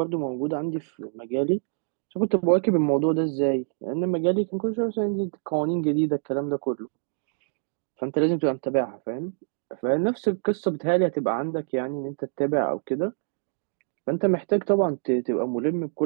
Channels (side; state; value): left; silent; digital silence